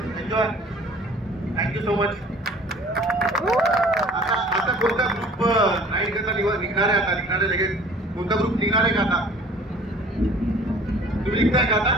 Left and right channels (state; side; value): normal; both; correlation 0.50